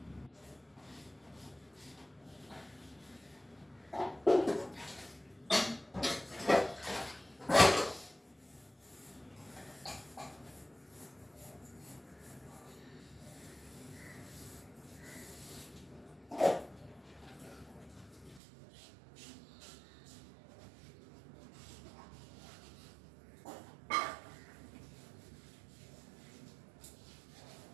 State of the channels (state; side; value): drops out; left; at 18.4 s